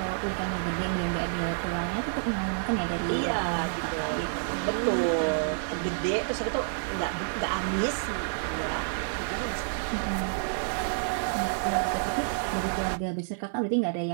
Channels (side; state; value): left; silent; digital silence